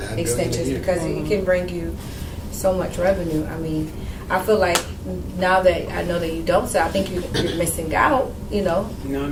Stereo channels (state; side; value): identical; both; correlation 1.00